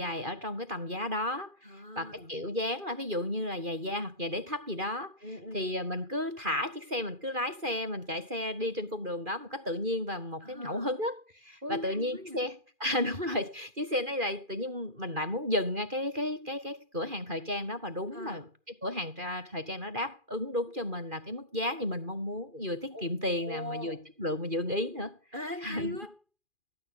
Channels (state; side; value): late; left; 2.4 ms